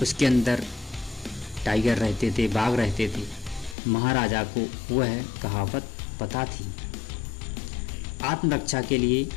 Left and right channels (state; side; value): drops out; right; at 3.8 s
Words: उसके अंदर टाइगर रहते थे, बाघ रहते थे। महाराजा को वह कहावत पता थी, आत्मरक्षा के लिए